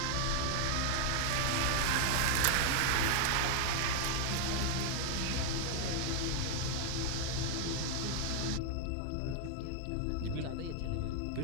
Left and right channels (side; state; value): both; different; correlation 0.00